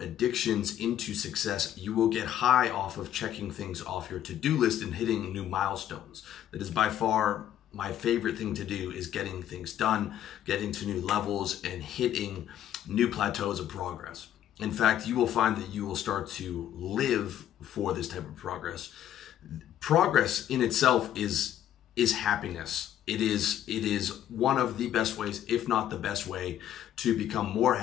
into success, you will get high off of checking things off your to-do list and hitting new milestones. That is by far my favorite thing to do, is getting things done, getting to new levels, and hitting new plateaus of progress. In fact, you will find that you will start to live for this type of progress. Progress in itself is happiness. It is one of the best ways, if not the best way, to become more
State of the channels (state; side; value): quieter; right; 11.3 dB